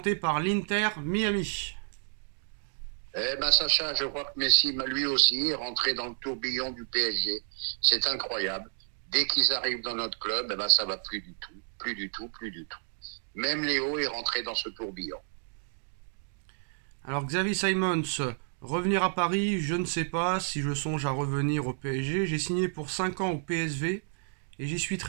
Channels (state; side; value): silent; left; digital silence